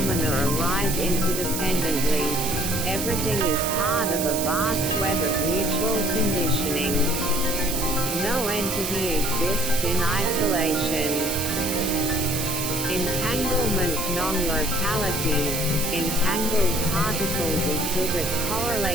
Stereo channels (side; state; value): right; noise; hiss, 3 dB below the sound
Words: arise interdependently. Everything is part of a vast web of mutual conditioning. No entity exists in isolation. Entanglement non-locality. Entangled particles exhibit